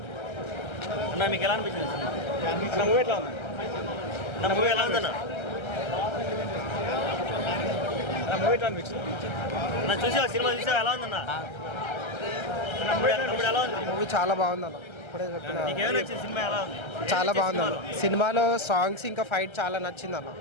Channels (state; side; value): late; right; 1.3 ms